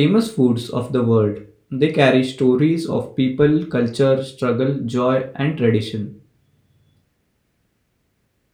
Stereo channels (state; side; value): identical; both; correlation 1.00